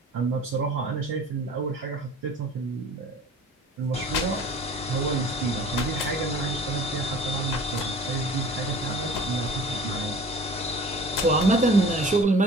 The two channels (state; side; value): normal; both; correlation 0.45